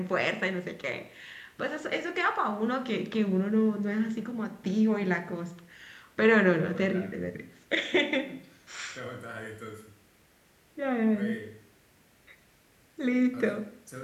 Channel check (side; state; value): both; identical; correlation 1.00